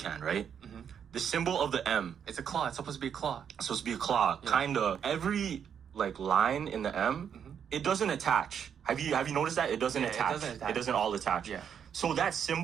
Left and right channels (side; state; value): left; quieter; 8.0 dB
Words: right? Mm-hmm. The symbol of the M. It's a claw. It's supposed to be a claw. It's supposed to be a claw. Yeah. Kinda. Every line in the M, it doesn't attach. Have you noticed that? It doesn't attach. It doesn't all attach. Yeah. So that